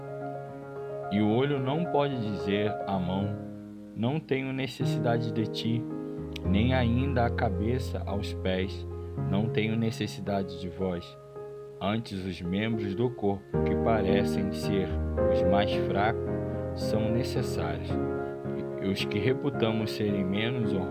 E o olho não pode dizer à mão, não tenho necessidade de ti, nem ainda a cabeça aos pés, não tenho necessidade de vós. Antes, os membros do corpo, que parecem ser os mais fracos, são necessários. E os que reputamos serem menos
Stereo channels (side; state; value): both; identical; correlation 1.00